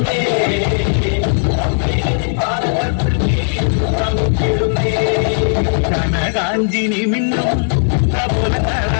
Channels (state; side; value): silent; right; digital silence